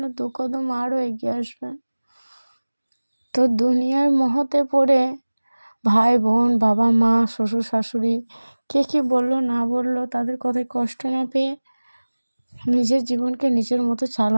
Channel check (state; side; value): inverted; both; correlation -1.00